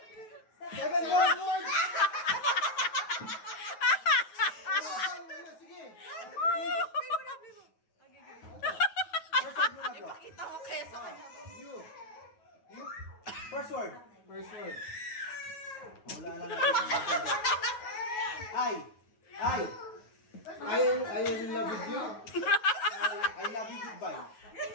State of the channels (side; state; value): right; late; 9.3 ms